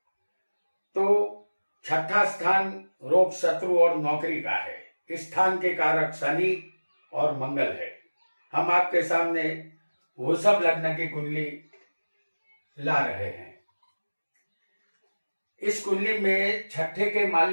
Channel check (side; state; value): both; inverted; correlation -1.00